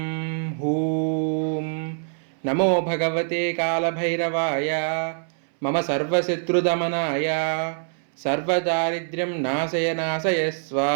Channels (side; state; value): left; silent; 62 dB below the other